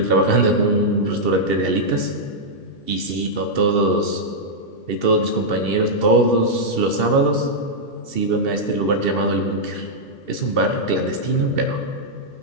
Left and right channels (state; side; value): late; right; 2.7 ms